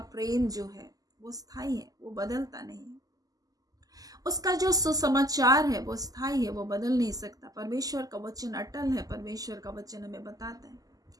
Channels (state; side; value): late; left; 0.17 ms